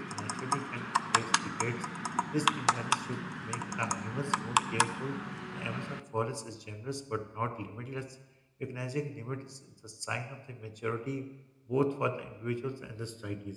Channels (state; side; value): identical; both; correlation 1.00